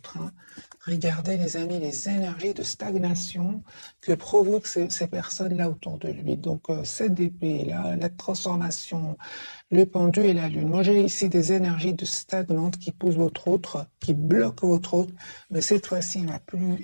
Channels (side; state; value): both; inverted; correlation -1.00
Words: Hein. Regardez, les amis, les énergies de stagnation que provoquent ces personnes-là autour de lui. Donc, cette épée-là, la transformation, le pendu et la lune. Moi, j'ai ici des énergies de stagnantes qui poussent votre autre, qui bloquent votre autre. Mais cette fois-ci,